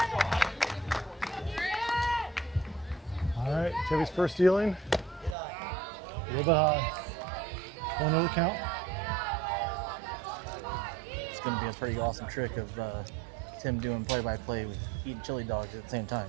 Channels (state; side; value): drops out; left; at 5.4 s